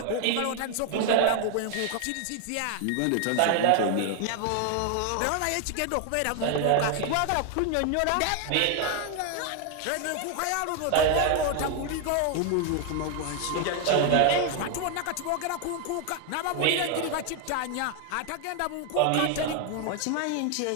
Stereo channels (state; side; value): different; both; correlation 0.01